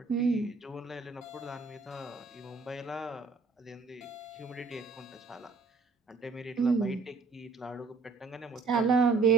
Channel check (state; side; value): quieter; left; 4.2 dB